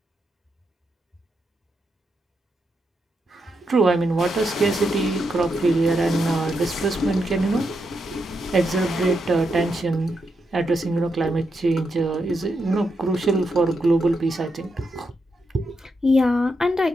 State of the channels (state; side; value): normal; both; correlation 0.83